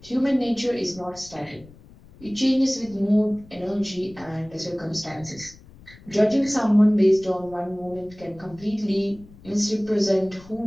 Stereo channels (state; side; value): noise; left; rumble, 23 dB below the sound